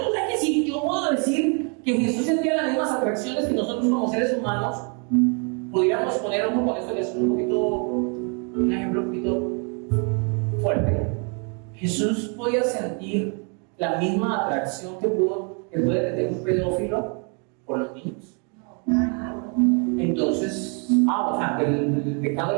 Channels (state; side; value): quieter; left; 37.3 dB